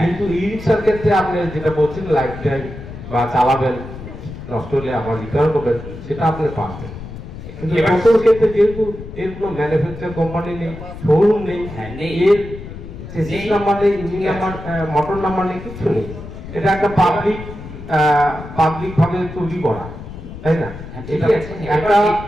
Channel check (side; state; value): left; noise; rumble, 12 dB below the sound